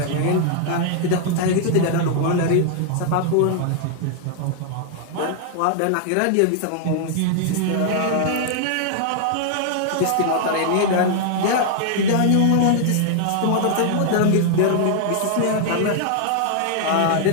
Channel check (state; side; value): different; both; correlation -0.01